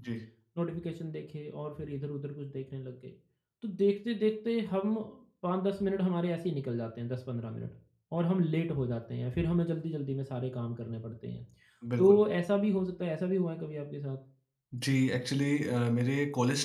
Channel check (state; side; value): identical; both; correlation 1.00